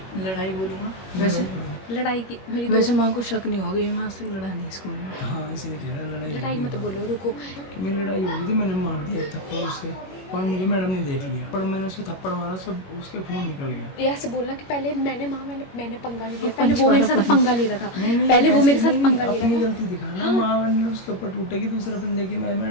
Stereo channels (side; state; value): right; late; 21 ms